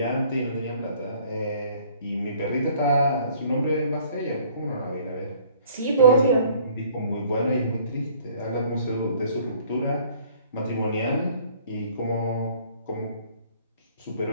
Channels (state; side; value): inverted; both; correlation -0.56